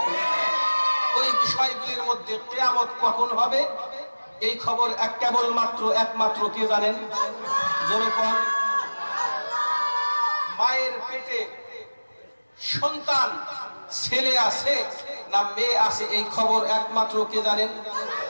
ওই বিষয়গুলির মধ্যে কিয়ামত কখন হবে এই খবর একমাত্র কে জানেন? জোরে কোন। মায়ের পেটে সন্তান ছেলে আছে না মেয়ে আছে এই খবর একমাত্র কে জানেন?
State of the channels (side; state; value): both; inverted; correlation -1.00